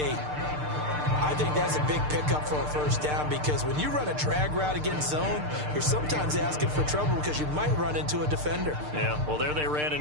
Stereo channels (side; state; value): left; late; 6.7 ms